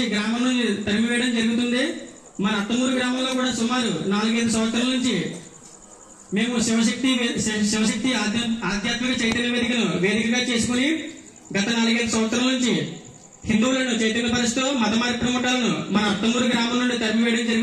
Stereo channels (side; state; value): both; identical; correlation 1.00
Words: గ్రామం నుంచి తరిమివేయడం జరుగుతుంది. మన అత్తమూరు గ్రామంలో కూడా సుమారు 4-5 సంవత్సరాల నుంచి మేము శివశక్తి ఆధ్యాత్మిక చైతన్య వేదికగా చేసుకుని గత 4-5 సంవత్సరాల నుంచి హిందువులను చైతన్యపరుస్తూ మత మార్పిడి ముఠాలను మన అత్తమూరు గ్రామం నుండి తరిమివేయడం